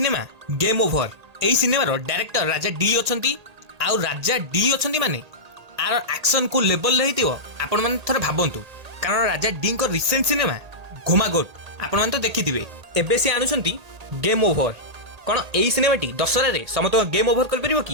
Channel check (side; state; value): left; late; 1.8 ms